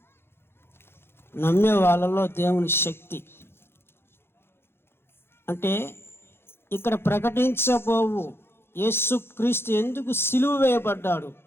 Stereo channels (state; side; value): late; right; 0.11 ms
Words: నమ్మే వాళ్ళలో దేవుని శక్తి అంటే ఇక్కడ ప్రకటించబోవు యేసుక్రీస్తు ఎందుకు సిలువ వేయబడ్డాడు,